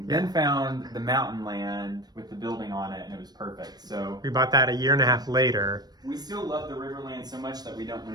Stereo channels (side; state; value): left; late; 0.19 ms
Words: Yeah. Then found the mountain land with the building on it, and it was perfect. So We bought that a year and a half later. we still love the Riverland so much that we don't